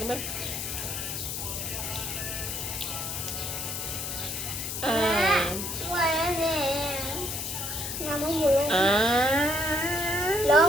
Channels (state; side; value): noise; left; hiss, 4 dB below the sound